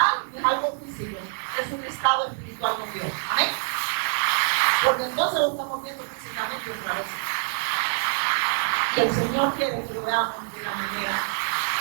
no es algo físico, es un estado espiritual con Dios. Amén. Porque entonces lo estamos viendo físicamente otra vez. Y el Señor quiere que lo veamos de la manera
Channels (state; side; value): silent; left; digital silence